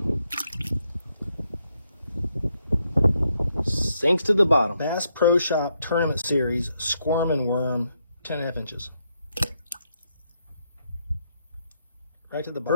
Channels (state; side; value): inverted; both; correlation -0.78